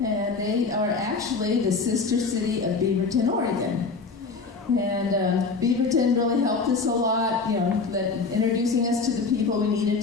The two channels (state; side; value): quieter; right; 4.4 dB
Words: they are actually the sister city of Beaverton, Oregon. And Beaverton really helped us a lot, you know, introducing us to the people we needed